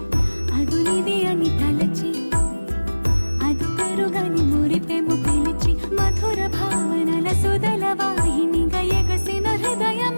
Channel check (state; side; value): inverted; both; correlation -1.00